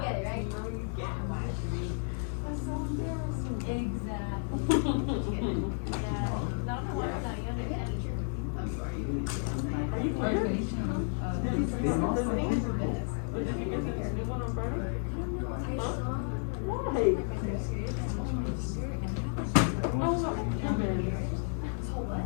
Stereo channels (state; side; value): silent; right; 56 dB below the other